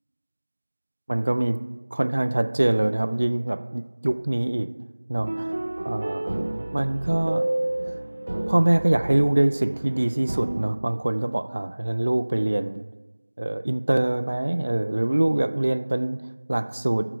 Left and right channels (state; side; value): inverted; both; correlation -1.00